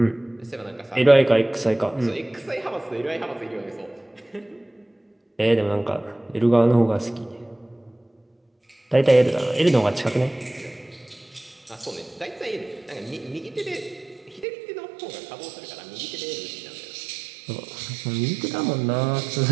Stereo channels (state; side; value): drops out; left; at 14.5 s